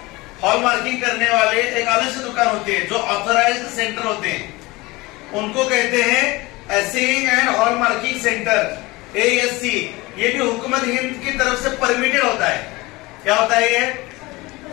हॉलमार्किंग करने वाले एक अलग से दुकान होते हैं जो ऑथराइज्ड सेंटर होते हैं, उनको कहते हैं असेइंग एंड हॉलमार्किंग सेंटर AHC। ये भी हुकूमत हिंद की तरफ से परमिटेड होता है। क्या होता है, ये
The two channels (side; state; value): right; quieter; 22.0 dB